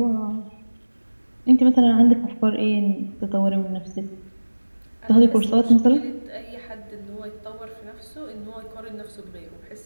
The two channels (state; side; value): inverted; both; correlation -1.00